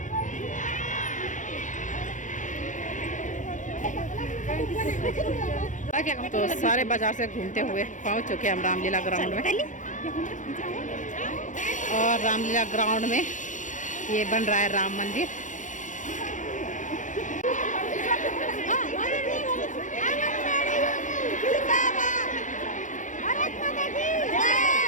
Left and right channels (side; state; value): right; late; 0.36 ms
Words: तो सारे बाजार से घूमते हुए पहुंच चुके हैं हम रामलीला ग्राउंड में। और रामलीला ग्राउंड में ये बन रहा है राम मंदिर।